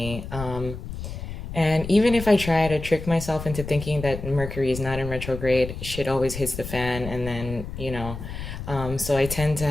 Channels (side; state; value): left; noise; rumble, 9 dB below the sound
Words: And even if I try to trick myself into thinking that Mercury is not in retrograde, shit always hits the fan, and then. So I tend